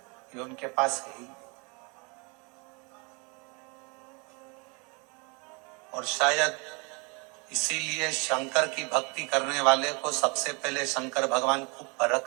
ये उनके पास है ही। और शायद इसीलिए शंकर की भक्ति करने वाले को सबसे पहले शंकर भगवान खूब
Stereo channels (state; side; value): quieter; left; 31.5 dB